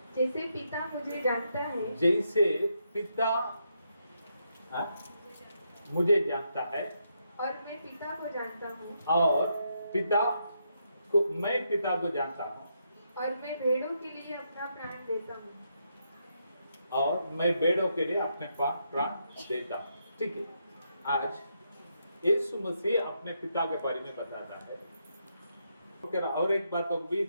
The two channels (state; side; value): inverted; both; correlation -0.80